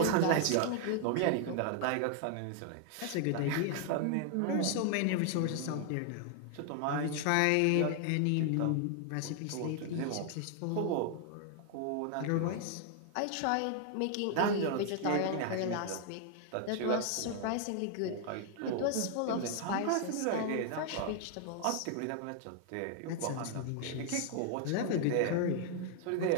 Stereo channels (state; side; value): different; both; correlation 0.00